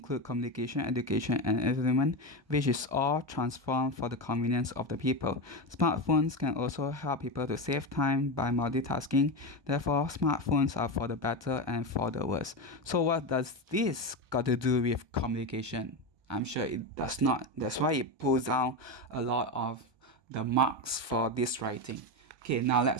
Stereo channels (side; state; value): left; late; 1.2 ms